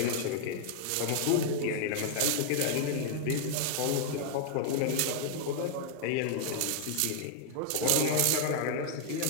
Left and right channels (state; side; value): different; both; correlation 0.00